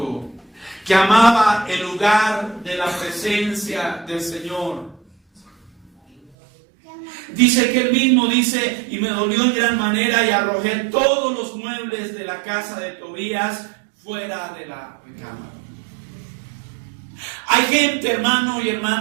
que amaba el lugar de la presencia del Señor. Dice que él mismo dice, y me dolió en gran manera y arrojé todos los muebles de la casa de Tobías fuera de la recámara. Hay gente, hermano y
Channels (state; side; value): drops out; left; at 6.3 s